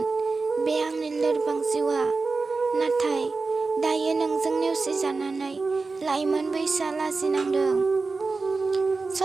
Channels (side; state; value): left; quieter; 4.0 dB